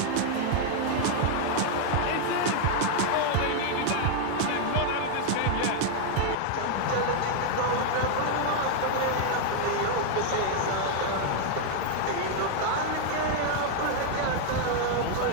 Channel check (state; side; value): different; both; correlation 0.00